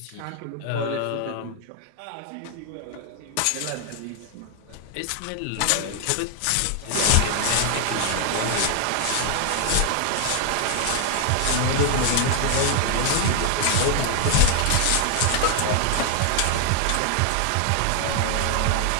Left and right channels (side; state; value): both; different; correlation 0.00